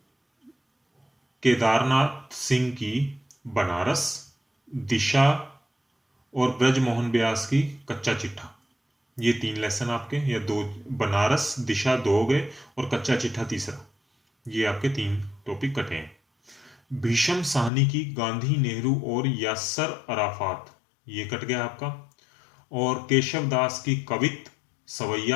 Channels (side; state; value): right; drops out; at 17.7 s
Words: केदारनाथ सिंह की बनारस, दिशा और ब्रजमोहन व्यास की कच्चा चिट्ठा, ये 3 लेसन आपके, या 2, बनारस दिशा 2 हो गए और कच्चा चिट्ठा तीसरा, ये आपके 3 टॉपिक कटे हैं। भीषम साहनी की गांधी, नेहरू और यासर अराफात, ये कट गया आपका। और केशव दास की कवित